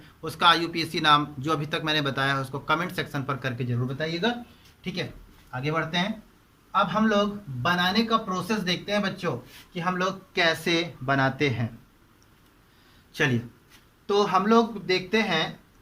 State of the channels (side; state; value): both; identical; correlation 1.00